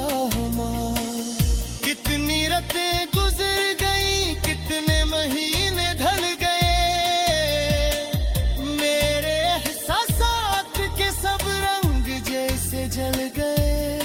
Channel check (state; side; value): identical; both; correlation 1.00